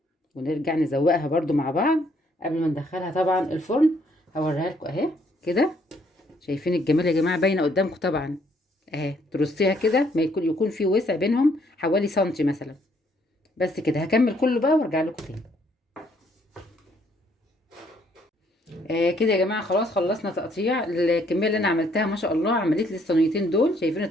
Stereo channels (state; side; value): normal; both; correlation 0.68